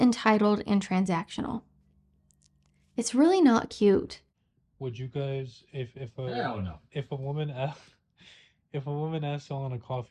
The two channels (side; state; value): both; identical; correlation 1.00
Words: and transactional? It's really not cute. Would you guys, Hell no. if a woman if a woman asked you on a